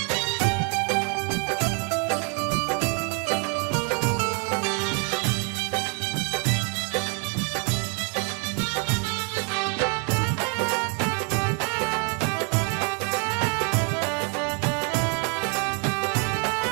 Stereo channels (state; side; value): quieter; left; 38.1 dB